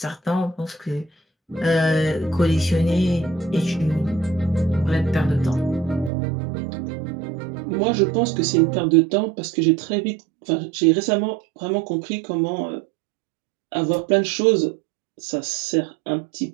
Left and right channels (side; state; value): left; drops out; at 6.1 s